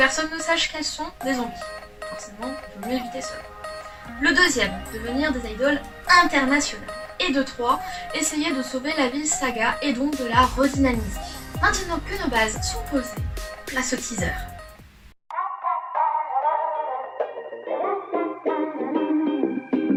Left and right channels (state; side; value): identical; both; correlation 1.00